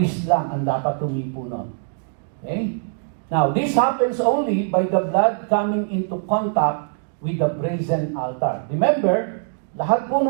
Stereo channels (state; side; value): silent; left; digital silence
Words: lang ang dapat humipo nun. Okay? Now, this happens only by the blood coming into contact with the brazen altar. Remember, lahat po